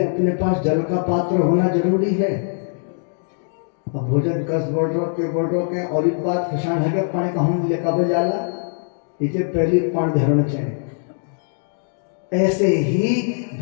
अपने पास जल का पात्र होना जरूरी है। अब भोजन कस बोल के और एक बात खिसान है कि पानी कहूँ ले कब जाला इसे पहले पानी धरण चाहिए। ऐसे ही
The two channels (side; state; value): right; silent; digital silence